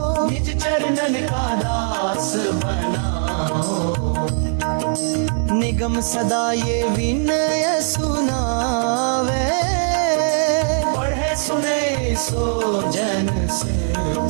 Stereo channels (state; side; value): silent; left; 66 dB below the other